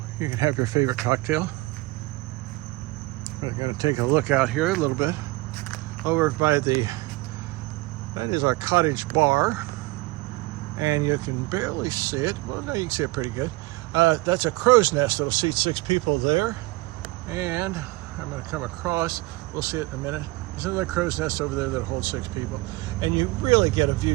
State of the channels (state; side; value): quieter; left; 21.3 dB